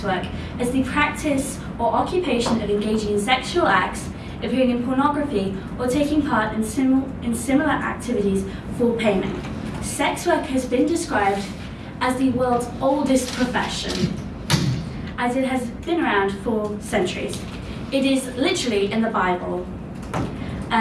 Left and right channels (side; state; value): both; identical; correlation 1.00